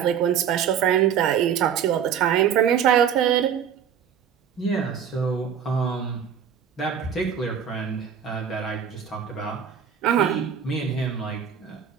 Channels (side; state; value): left; quieter; 8.2 dB